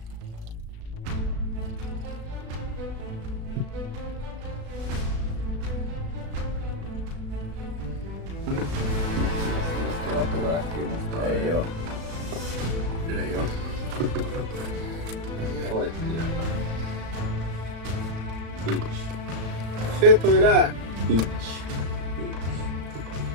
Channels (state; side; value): late; left; 36 ms